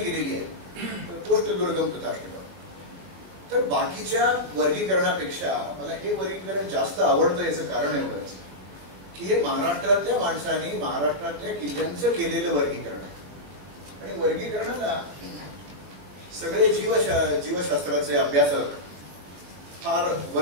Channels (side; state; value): left; late; 21 ms